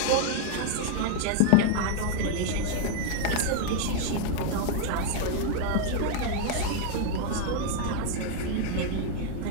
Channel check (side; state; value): both; different; correlation 0.00